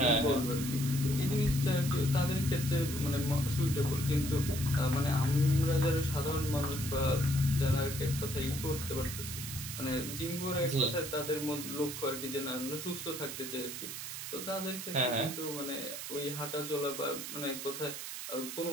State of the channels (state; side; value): noise; right; hiss, 7 dB below the sound